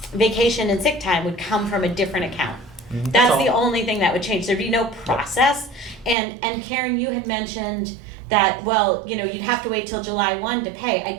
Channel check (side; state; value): left; drops out; at 6.2 s